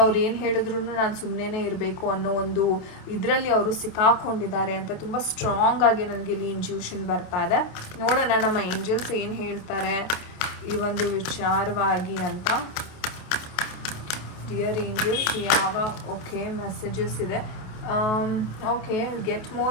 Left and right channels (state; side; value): late; right; 27 ms